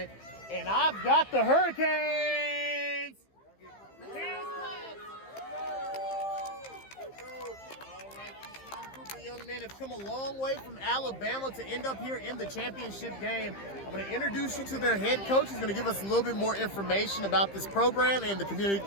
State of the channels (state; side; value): late; right; 15 ms